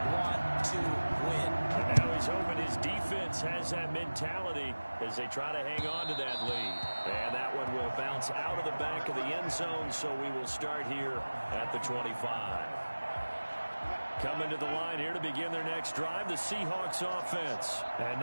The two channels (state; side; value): inverted; both; correlation -1.00